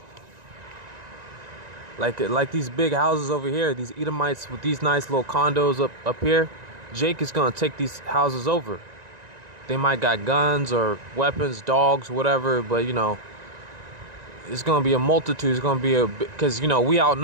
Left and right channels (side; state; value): left; late; 1.9 ms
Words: Like these big houses over here, these Edomites with these nice little condos up here, Jake is gonna take these houses over. They might got guns or weapons, dogs, whatever, but It's gonna be a multitude. It's gonna be because we